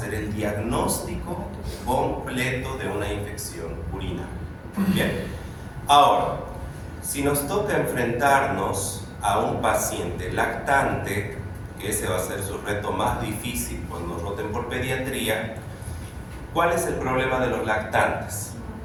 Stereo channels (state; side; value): identical; both; correlation 1.00